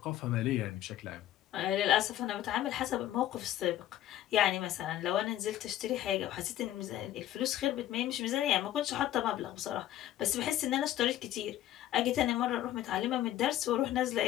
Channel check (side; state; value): right; quieter; 13.0 dB